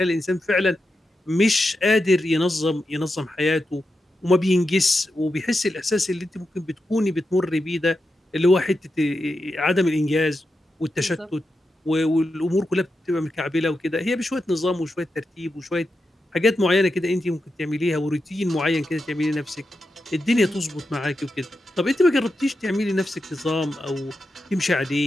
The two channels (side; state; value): both; normal; correlation 0.88